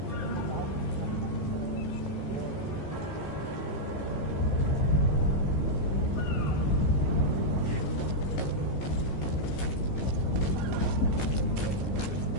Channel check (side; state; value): right; late; 15 ms